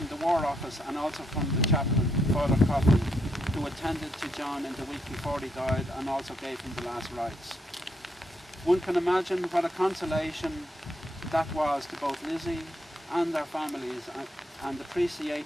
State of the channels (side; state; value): both; normal; correlation 0.77